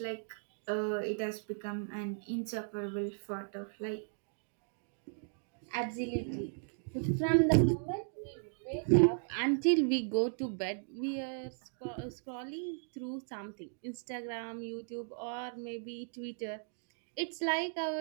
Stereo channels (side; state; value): left; silent; digital silence